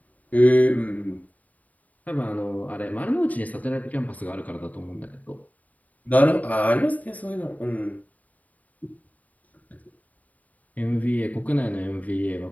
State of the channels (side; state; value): right; late; 0.073 ms